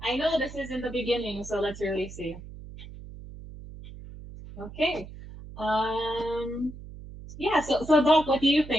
I know this is in the beginning, so let's really see. Okay. Yeah, so Doc, what do you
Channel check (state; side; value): noise; right; hum, 14 dB below the sound